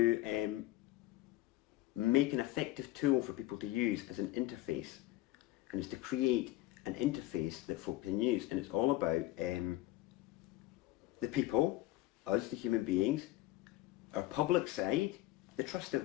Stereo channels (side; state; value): right; quieter; 16.5 dB